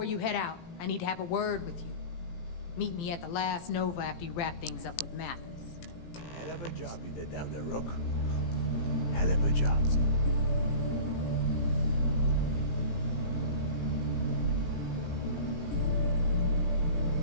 you head out, I need to have a word with you. Meet me at the last Nova after you wrap things up with Mathis. Hell of a job you did down there, Rook. Hell of a job.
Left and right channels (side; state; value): right; late; 18 ms